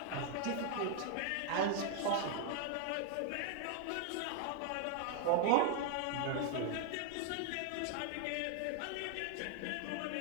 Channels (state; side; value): different; both; correlation 0.00